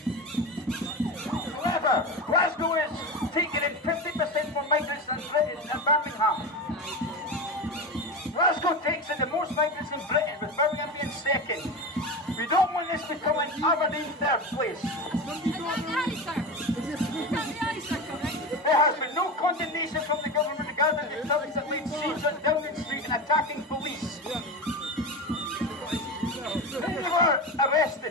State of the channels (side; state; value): both; normal; correlation 0.23